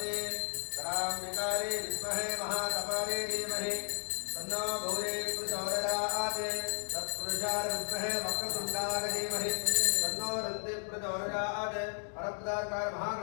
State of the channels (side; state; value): right; silent; digital silence